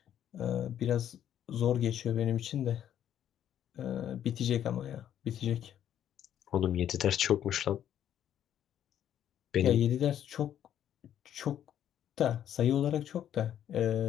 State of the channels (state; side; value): quieter; right; 10.4 dB